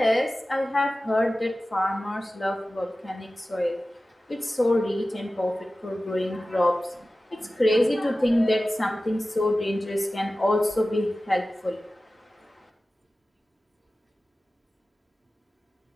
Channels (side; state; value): both; normal; correlation 0.95